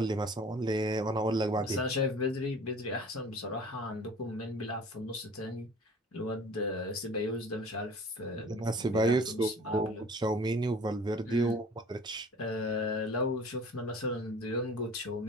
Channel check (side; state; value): both; normal; correlation 0.46